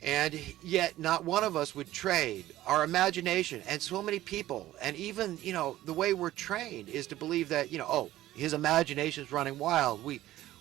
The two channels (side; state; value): left; quieter; 14.9 dB